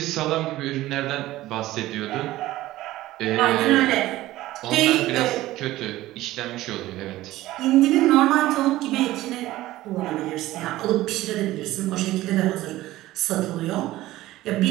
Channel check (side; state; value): left; quieter; 16.3 dB